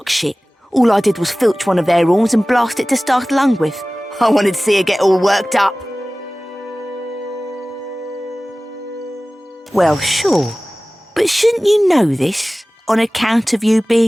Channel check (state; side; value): normal; both; correlation 0.98